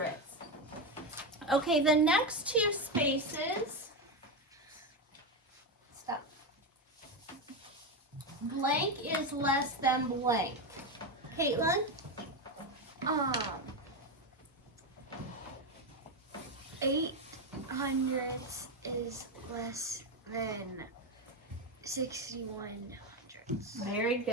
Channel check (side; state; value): both; normal; correlation 0.12